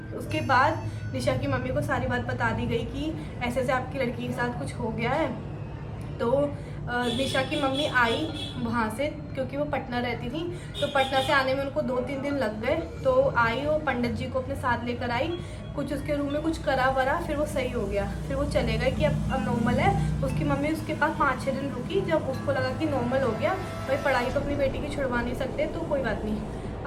उसके बाद निशा की मम्मी को सारी बात बता दी गई कि ऐसे ऐसे आपकी लड़की के साथ कुछ हो गया है। तो निशा की मम्मी आई वहाँ से, क्योंकि वो पटना रहती थी, तो पटना से आने में उनको 2-3 दिन लग गए। तो आई, वो पंडित जी को अपने साथ लेकर आई, कुछ उसके रूम में कुछ करा वरा, फिर वो सही हो गया। फिर वो चले गए कि अब नॉर्मल है। उसकी मम्मी उसके पास 5-6 दिन रुकी, जब उसको लगा कि नॉर्मल हो गया, भाई पढ़ाई तो अपनी बेटी की छुड़वा नहीं सकते, तो कोई बात नहीं।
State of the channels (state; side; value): identical; both; correlation 1.00